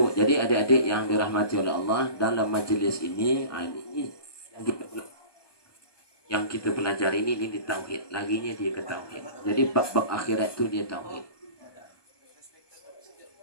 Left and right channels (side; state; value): right; late; 1.2 ms